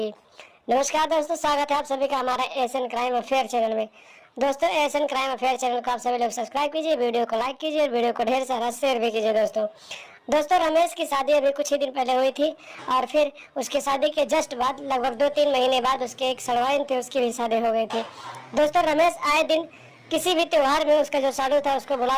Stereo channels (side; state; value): both; identical; correlation 1.00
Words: नमस्कार दोस्तों, स्वागत है आप सभी का हमारा एशियन क्राइम अफेयर चैनल में। दोस्तों, एशियन क्राइम अफेयर चैनल को आप सभी लोग सब्सक्राइब कीजिए, वीडियो को लाइक कीजिए और वीडियो को ढेर सारा शेयर भी कीजिए। दोस्तों रमेश की शादी अभी कुछ ही दिन पहले हुई थी और फिर उसकी शादी के जस्ट बाद लगभग 2-3 महीने बाद उसके एक सड़वाइन थे, उसकी भी शादी हो गई थी। दोस्तों, रमेश आए दिन किसी भी त्योहार में उसका जो साड़ू था उसको